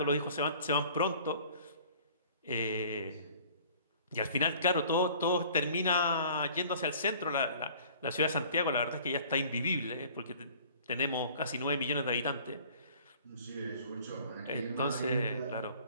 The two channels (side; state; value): both; inverted; correlation -0.50